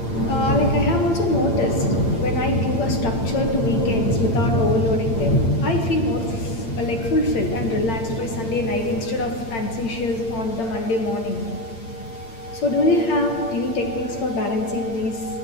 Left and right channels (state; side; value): late; right; 8.8 ms